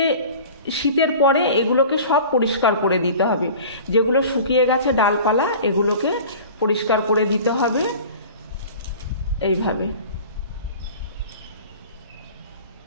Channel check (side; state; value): both; inverted; correlation -0.40